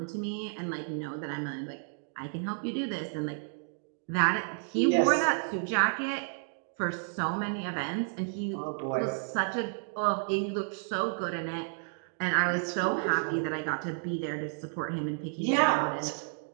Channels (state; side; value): silent; left; 57 dB below the other